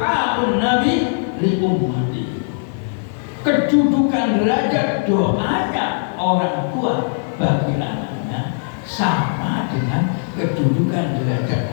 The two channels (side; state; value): right; silent; digital silence